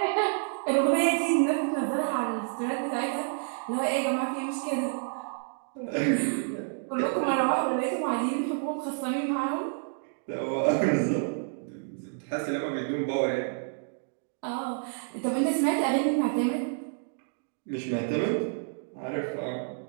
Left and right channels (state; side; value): silent; left; digital silence